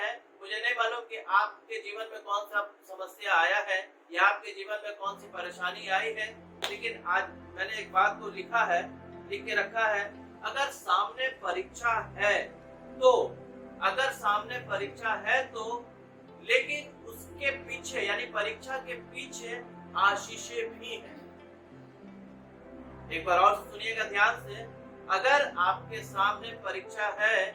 मुझे नहीं मालूम कि आपके जीवन में कौन सा समस्या आया है या आपके जीवन में कौन सी परेशानी आई है, लेकिन आज मैंने एक बात को लिख के रखा है। अगर सामने परीक्षा है तो लेकिन उसके पीछे यानी परीक्षा के पीछे आशीषें भी हैं। एक बार और सुनिएगा ध्यान से, अगर आपके सामने परीक्षा है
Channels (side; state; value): both; identical; correlation 1.00